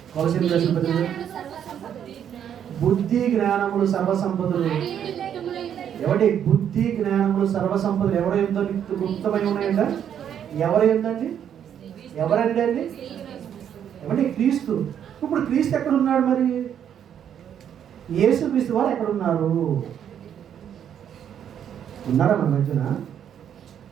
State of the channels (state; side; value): quieter; left; 9.2 dB